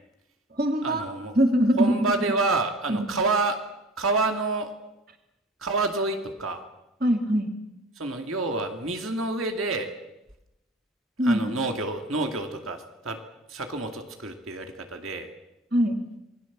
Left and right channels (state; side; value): normal; both; correlation 0.44